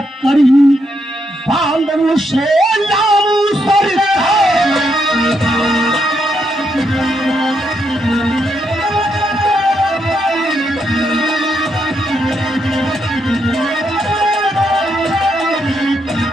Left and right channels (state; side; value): normal; both; correlation 0.79